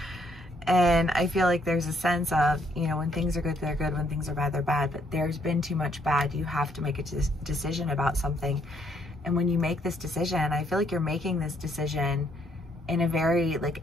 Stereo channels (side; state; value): both; normal; correlation 0.70